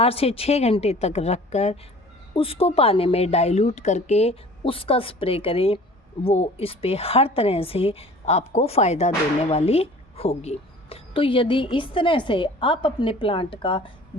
से 6 घंटे तक रखकर उसको पानी में डाइल्यूट करके उसका स्प्रे करें। वो इस पे हर तरह से आपको फ़ायदा देने वाली होगी। तो यदि इस तरह से आप अपने प्लांट का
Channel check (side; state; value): both; normal; correlation 0.46